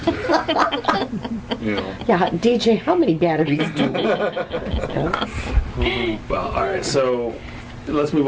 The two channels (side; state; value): both; identical; correlation 1.00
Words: Yeah, DJ, how many batteries do we? Well, all right, so let's move